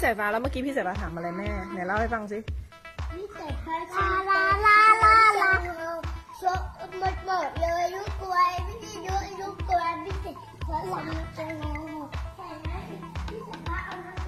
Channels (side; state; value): both; identical; correlation 1.00